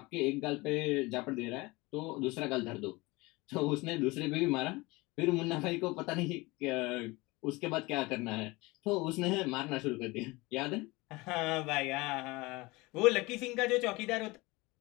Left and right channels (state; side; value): quieter; right; 23.0 dB